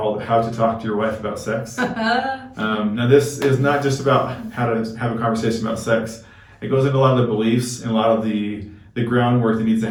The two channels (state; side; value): identical; both; correlation 1.00